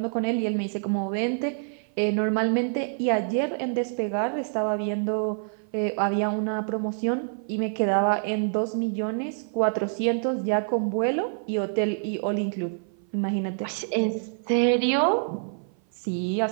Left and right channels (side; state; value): left; silent; 56 dB below the other